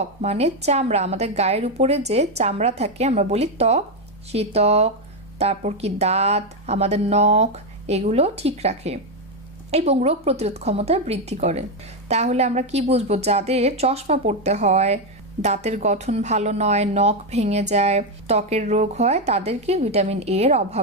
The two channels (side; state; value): both; normal; correlation 0.06